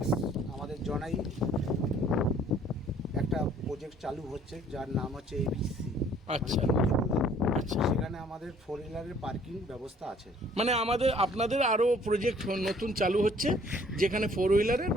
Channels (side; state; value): both; normal; correlation 0.58